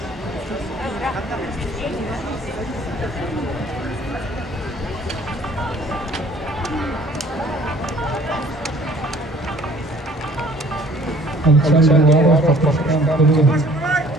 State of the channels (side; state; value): both; normal; correlation 0.55